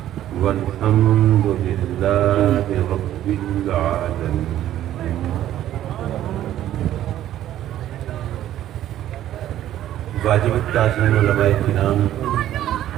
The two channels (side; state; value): left; quieter; 12.4 dB